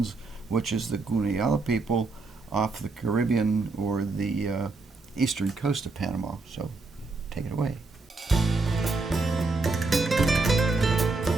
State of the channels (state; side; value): quieter; left; 3.6 dB